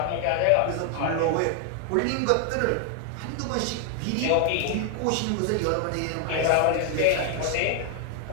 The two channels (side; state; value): both; different; correlation 0.00